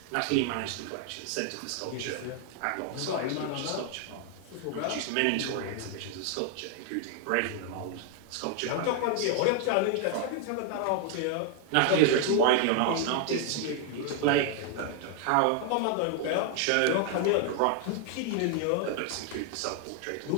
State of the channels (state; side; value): different; both; correlation 0.00